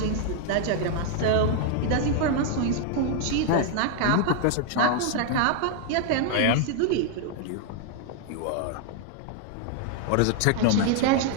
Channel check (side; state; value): both; different; correlation 0.00